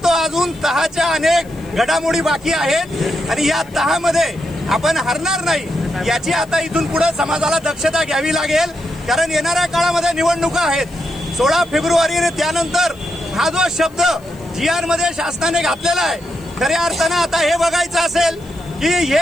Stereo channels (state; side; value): noise; left; hiss, 28 dB below the sound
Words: तो अजून तहाच्या अनेक घडामोडी बाकी आहेत आणि या तहामध्ये आपण हरणार नाही याची आता इथून पुढे समाजाला दक्षता घ्यावी लागेल. कारण येणाऱ्या काळामध्ये निवडणुका आहेत. 16 फेब्रुवारी त्यानंतर हा जो शब्द GR मध्ये शासनाने घातलेला आहे खऱ्या अर्थानं आता हे बघायचं असेल की